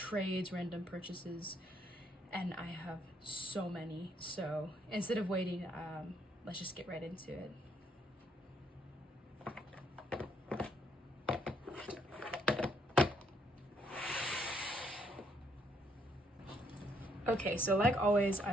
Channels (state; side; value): normal; both; correlation 0.71